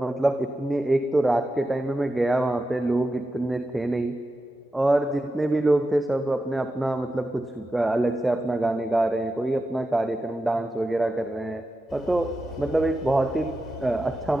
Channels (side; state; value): both; normal; correlation 0.90